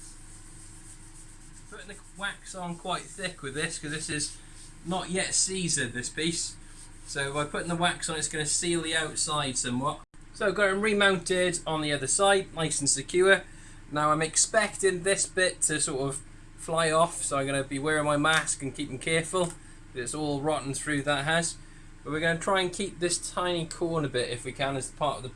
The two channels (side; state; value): both; identical; correlation 1.00